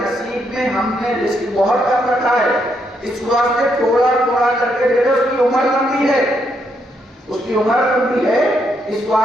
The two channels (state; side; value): normal; both; correlation 0.77